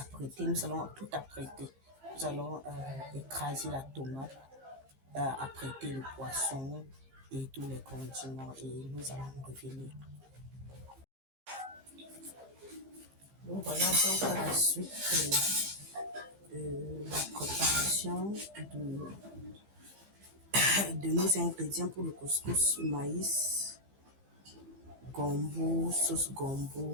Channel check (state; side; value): late; left; 15 ms